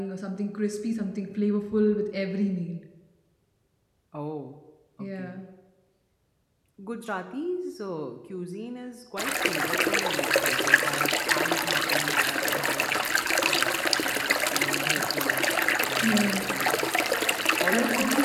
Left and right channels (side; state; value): both; identical; correlation 1.00